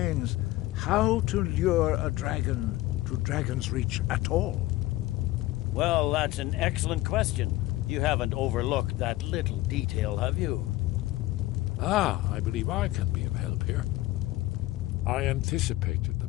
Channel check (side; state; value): right; quieter; 17.4 dB